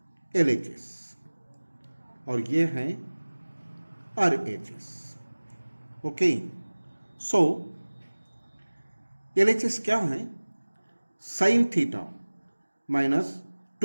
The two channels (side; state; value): both; inverted; correlation -1.00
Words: LHS और ये है RHS। ओके, सो LHS क्या है, sine theta minus